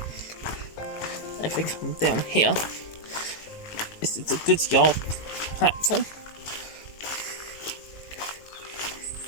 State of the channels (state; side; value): late; right; 19 ms